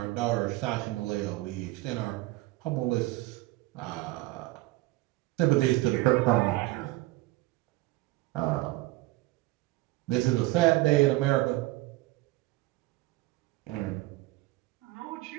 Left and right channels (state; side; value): quieter; left; 19.1 dB